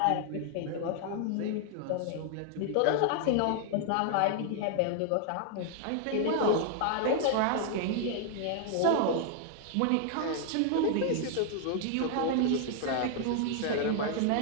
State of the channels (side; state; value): both; different; correlation 0.00